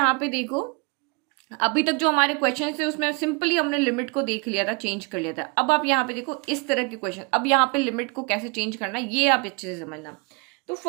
पे देखो, अभी तक जो हमारे क्वेश्चन थे उसमें सिंपली हमने लिमिट को देख लिया था, चेंज कर लिया था। अब आप यहाँ पे देखो इस तरह के क्वेश्चन, अब यहाँ पे लिमिट को कैसे चेंज करना है ये आप अच्छे से समझना। तो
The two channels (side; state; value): left; quieter; 31.2 dB